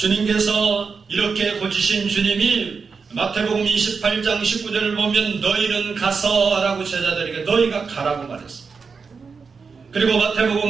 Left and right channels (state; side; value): quieter; left; 5.2 dB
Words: 이렇게 고치신 주님이 마태복음 28장 19절을 보면 너희는 가서 라고 제자들에게 너희가 가라고 말했습니다. 그리고